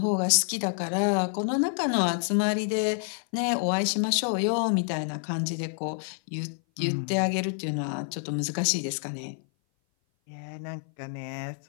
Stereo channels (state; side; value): silent; right; 57 dB below the other